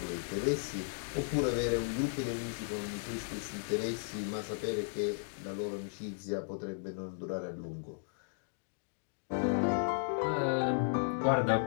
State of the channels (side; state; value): right; silent; digital silence